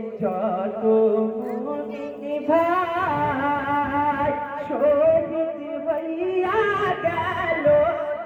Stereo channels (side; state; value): both; identical; correlation 1.00